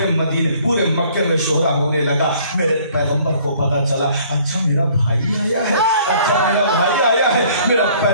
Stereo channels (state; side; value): inverted; both; correlation -0.57